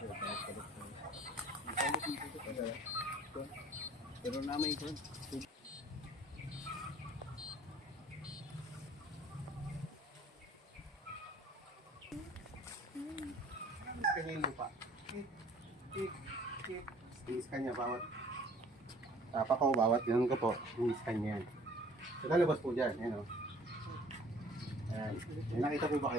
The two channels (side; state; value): both; normal; correlation 0.53